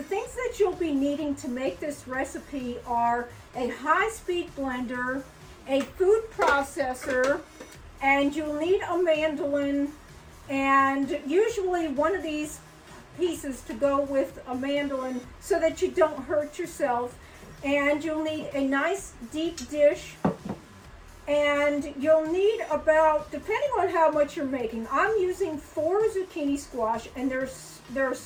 things that you'll be needing to make this recipe are a high-speed blender, a food processor, and you'll need a mandolin, and usually one of these pieces to go with a mandolin so that you don't hurt yourself. And you'll need a nice deep dish, and you'll need about, depending on how much you're making, I'm using 4 zucchini squash, and they're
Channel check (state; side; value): identical; both; correlation 1.00